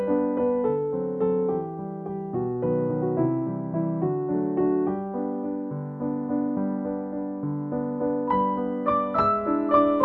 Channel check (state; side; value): identical; both; correlation 1.00